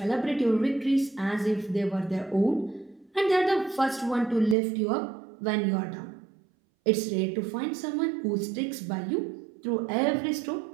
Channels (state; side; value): drops out; left; at 4.5 s